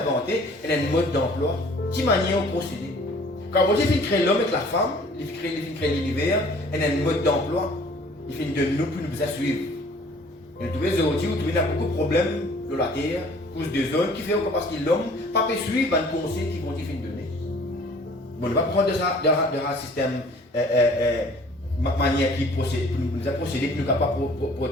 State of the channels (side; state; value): both; normal; correlation 0.53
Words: il y a un mode d'emploi. Qui manière de procéder. Quand Dieu fait créer l'homme avec la femme, il fait créer l'univers, il y a un mode d'emploi. Il fait de nous pour nous suivre. Nous trouvons aujourd'hui, vous trouvez beaucoup de problèmes dans la terre, cause de zones qui fait parce que l'homme ne peut pas suivre un conseil qui vont dire donner. Bon, on va prendre de un système manière qui procède, nous a procédé, qui nous n'a pas